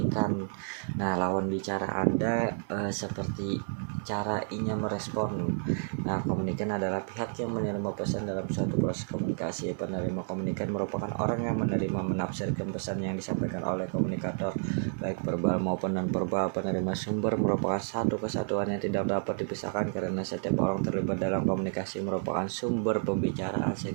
Nah, lawan bicara Anda seperti cara inya merespon. Nah, komunikan adalah pihak yang menerima pesan dalam suatu proses komunikasi. Penerima komunikan merupakan orang yang menerima menafsirkan pesan yang disampaikan oleh komunikator, baik verbal maupun non-verbal. Penerima sumber merupakan satu kesatuan yang tidak dapat dipisahkan karena setiap orang terlibat dalam komunikasi merupakan sumber pembicaraan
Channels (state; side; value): silent; left; 58 dB below the other